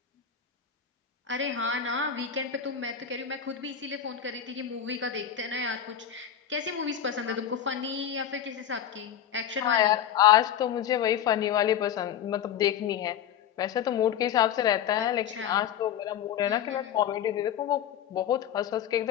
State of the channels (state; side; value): quieter; right; 9.4 dB